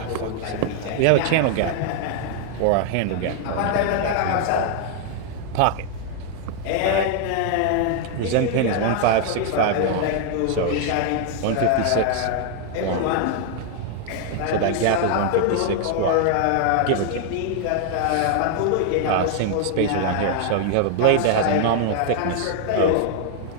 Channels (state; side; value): different; both; correlation 0.00